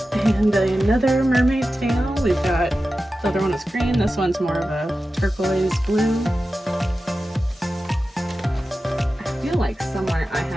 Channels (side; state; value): both; normal; correlation 0.93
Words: And another mermaid tail. We've got, the other one is green, this one's more of a turquoise blue. I feel like somewhere I